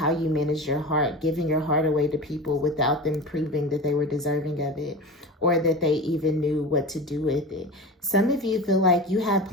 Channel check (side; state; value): both; normal; correlation 0.30